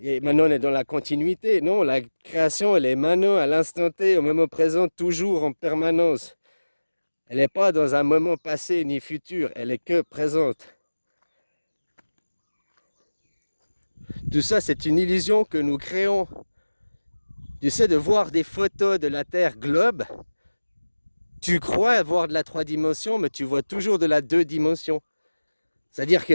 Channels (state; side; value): inverted; both; correlation -1.00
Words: maintenant, on est dans la continuité. Non, la création, elle est maintenant, à l'instant T, au moment présent, toujours en permanence. Elle n'est pas dans un moment passé ni futur, elle est que présente. Tout ça, c'est une illusion que nous créons. Tu sais, de voir des photos de la Terre globe, tu crois voir de la 3 dimensions, mais tu vois toujours de la 2 dimensions. C'est-à-dire